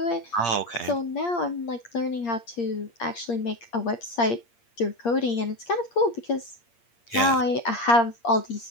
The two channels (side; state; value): right; late; 8.6 ms